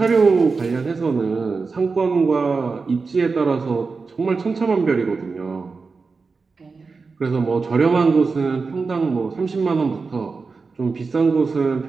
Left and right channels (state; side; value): quieter; left; 4.5 dB